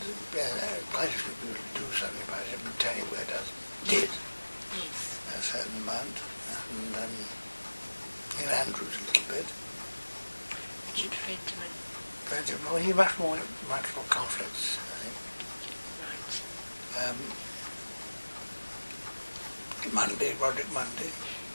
a few people do something about it, but tell you where it did. Yes. A certain amount. And Neil Andrews a little bit. Richard Fentiman. But well, he much more conflicts, I think. Right. Roderick Mundy.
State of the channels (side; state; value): both; inverted; correlation -1.00